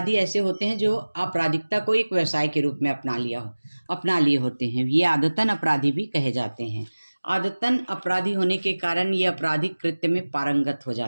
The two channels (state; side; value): inverted; both; correlation -1.00